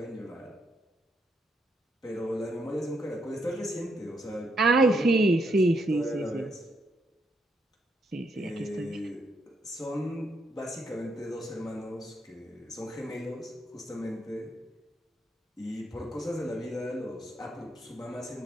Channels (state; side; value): normal; both; correlation 0.77